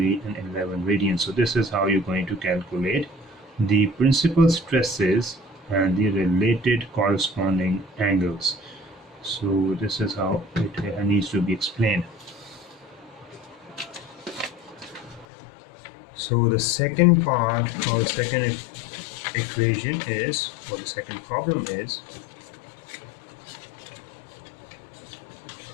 and 11 radian. So this is how you're going to calculate the principal stresses and the related corresponding angles. So this is how it needs to be explained. So the second part, or the second equation is, or the second problem is,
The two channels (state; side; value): drops out; right; at 15.2 s